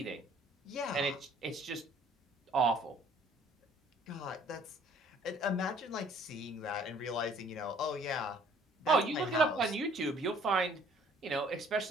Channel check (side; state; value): both; normal; correlation 0.57